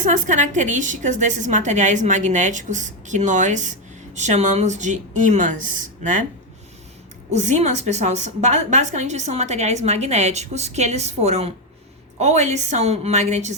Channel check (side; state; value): both; normal; correlation 0.07